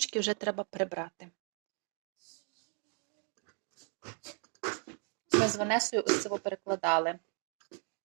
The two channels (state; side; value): quieter; left; 37.9 dB